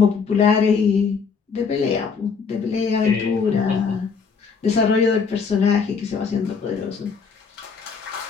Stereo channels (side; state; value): right; quieter; 5.6 dB